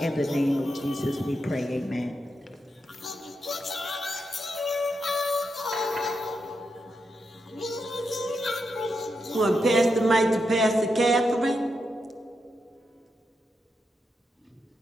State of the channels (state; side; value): normal; both; correlation 0.85